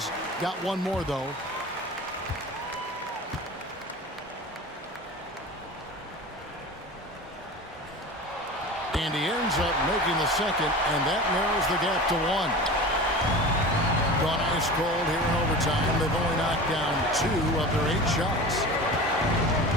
got one more, though. And he ends up making the second, and that narrows the gap to one. Gone ice cold here in overtime. They've only knocked down 2 of their 8 shots.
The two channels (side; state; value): both; normal; correlation 0.34